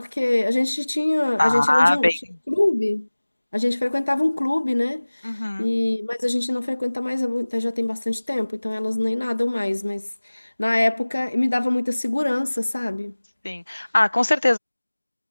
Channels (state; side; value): inverted; both; correlation -1.00